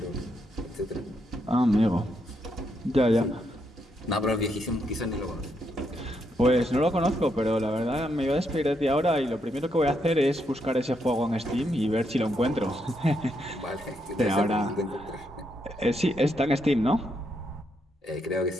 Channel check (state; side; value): normal; both; correlation 0.78